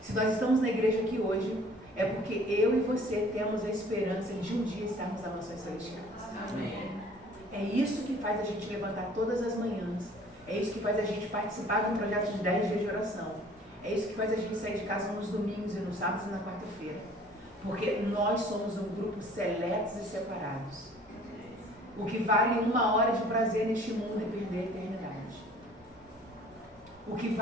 nós estamos na igreja aqui hoje, É porque eu e você temos a esperança de um dia estarmos nas mansões celestiais. Amém. É isso que faz a gente levantar todas as manhãs. É isso que faz a gente participar de um projeto de 10 dias de oração. É isso que faz a gente sair de casa nos domingos e nos sábados e na quarta-feira. Porque nós somos um grupo seletos e separados. O que vale 1 hora de prazer neste mundo é perder a eternidade. O que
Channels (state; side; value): normal; both; correlation 0.52